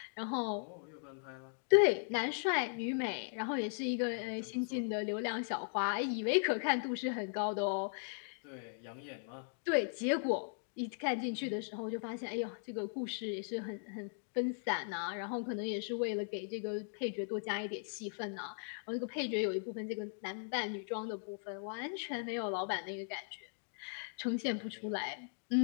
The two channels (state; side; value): silent; right; digital silence